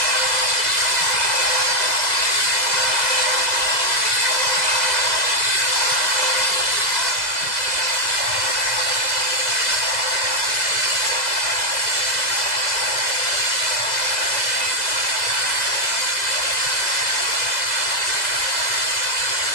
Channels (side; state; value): right; late; 2.0 ms